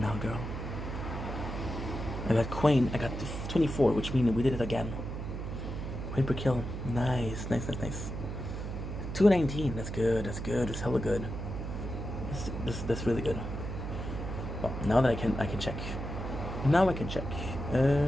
now, girl. I got Queen. I got 24, which means we did it again. Queen per kill. Nice. 219. That's good. That's hella good. That's really good. Well, now that I can check. Now I can check.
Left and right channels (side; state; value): right; noise; hum, 5 dB below the sound